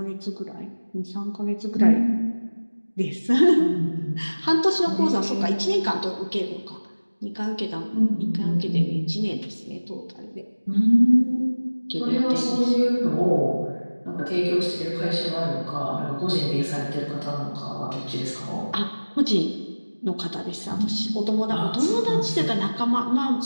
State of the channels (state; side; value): inverted; both; correlation -1.00